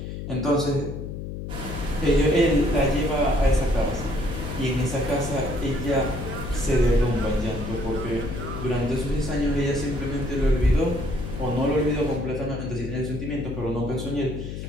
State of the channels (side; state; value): left; noise; hum, 7 dB below the sound